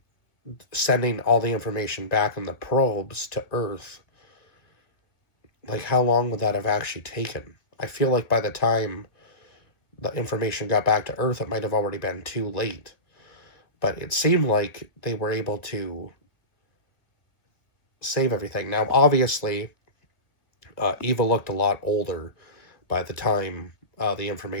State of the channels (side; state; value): right; late; 1.9 ms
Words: sending all the information back in the probes to Earth, like how long would that have actually taken? I feel like by the time the information got back to Earth, it might have already been too late. But it seemed like they were able to save everything. Now, obviously, Eva looked a lot older by the time the